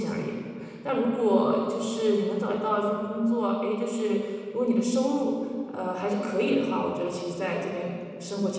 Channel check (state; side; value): identical; both; correlation 1.00